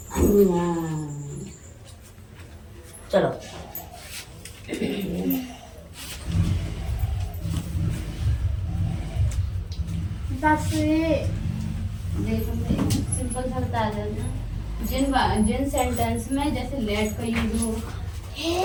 चलो बस देखो सिंपल सा बता देना। जिन सेंटेंस में जैसे लेट का यूज हो,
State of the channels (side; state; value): both; identical; correlation 1.00